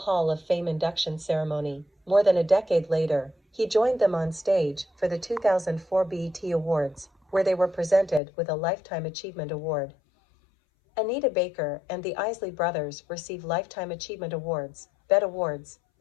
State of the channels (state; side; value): drops out; right; at 8.2 s